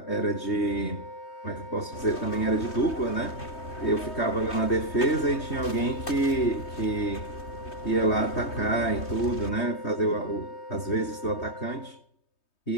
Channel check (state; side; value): late; right; 3.2 ms